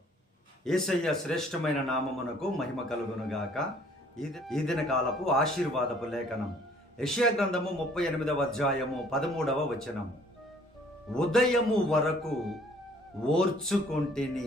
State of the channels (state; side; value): normal; both; correlation 0.58